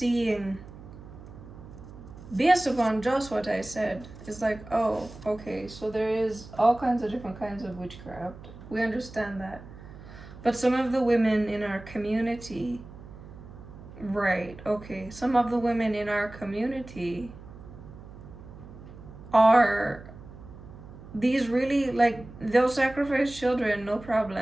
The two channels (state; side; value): noise; right; hum, 16 dB below the sound